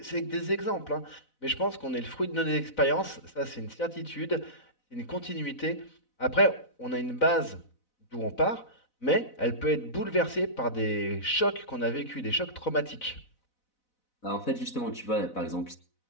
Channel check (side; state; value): right; late; 4.0 ms